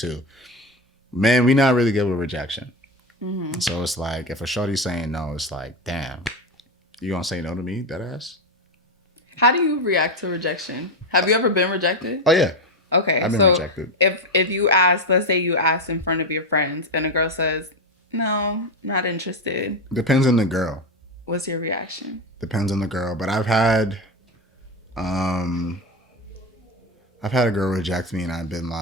Man, we not really good with rejection. Mm-hmm. So it's like, if a shorty's saying no, it's like, damn, you gonna say no to me, that ass? How do you react to rejection? Have you ever been rejected? Oh yeah. Okay. I've been so rejected. If you ask, let's say you ask in front of your friends and a girl says, no, not interested. Depends on the girl. What's your reaction? Depends on the girl. But I've had a girl reject me and I've been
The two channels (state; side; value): normal; both; correlation 0.14